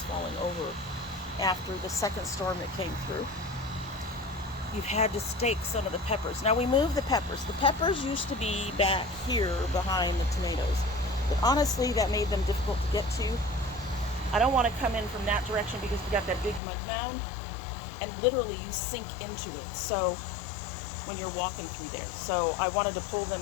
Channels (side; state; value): right; drops out; at 16.6 s